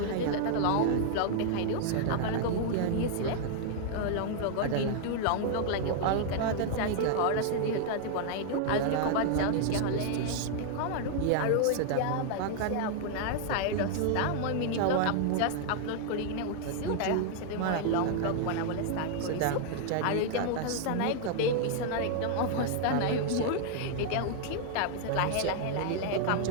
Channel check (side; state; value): both; different; correlation 0.00